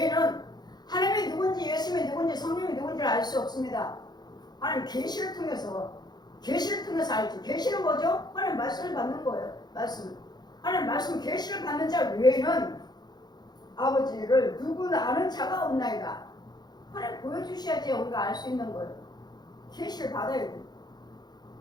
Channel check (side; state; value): right; late; 0.20 ms